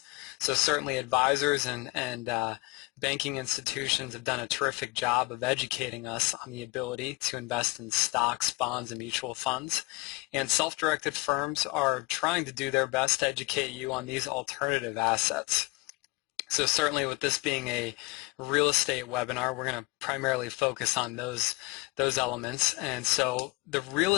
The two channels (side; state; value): right; quieter; 24.3 dB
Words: So certainly advisors and banking institutions have done a terrific job of educating us on the ability to invest in stocks, bonds, and mutual funds. And self-directed firms are trying to do their best to educate you on these alternative assets. So certainly with this being a real estate webinar, we're going to primarily focus on those elements. And so the real